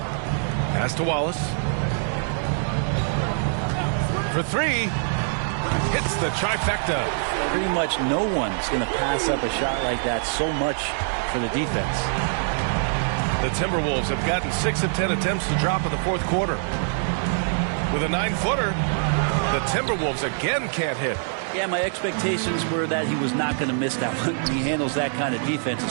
Pass to Wallace. For three. Hits the trifecta. Pretty much no one's going to pass up a shot like that so much for the defense. The Timberwolves have gotten 6 of 10 attempts to drop in the fourth quarter. With a 9-footer, the Timberwolves again can't hit. Yeah, my expectations were that he was not going to miss that one. He handles that kind of defense,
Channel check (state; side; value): silent; left; digital silence